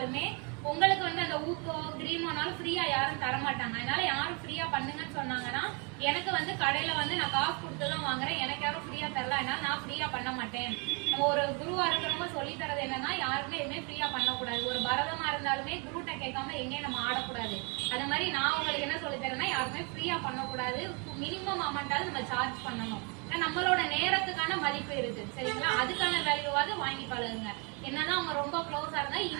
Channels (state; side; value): quieter; left; 33.7 dB